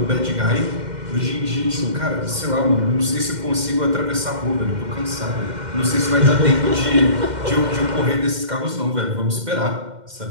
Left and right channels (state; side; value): late; left; 2.1 ms